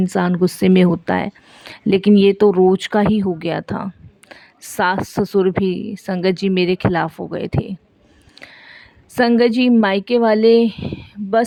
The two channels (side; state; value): both; identical; correlation 1.00